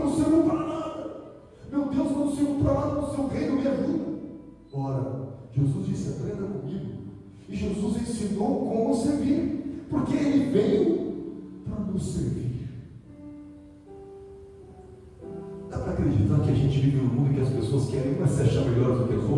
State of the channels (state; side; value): identical; both; correlation 1.00